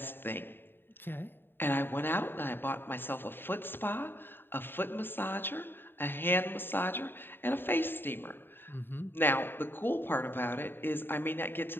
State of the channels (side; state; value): right; late; 0.099 ms